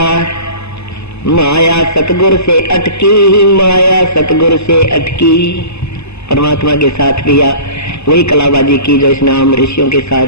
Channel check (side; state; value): right; late; 0.80 ms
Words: माया सतगुरु से अटकी, माया सतगुरु से अटकी। परमात्मा के साथ भी वही कलाबाजी की जो इसने आम ऋषियों के साथ,